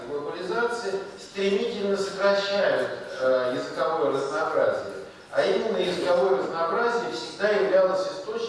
и глобализация стремительно сокращают языковое разнообразие. А именно языковое разнообразие всегда являлось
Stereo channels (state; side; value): identical; both; correlation 1.00